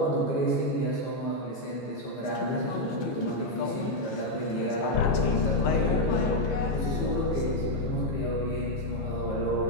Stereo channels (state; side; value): late; right; 15 ms